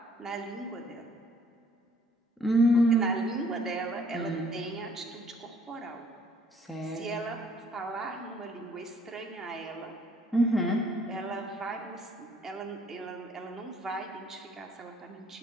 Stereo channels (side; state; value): both; normal; correlation 0.61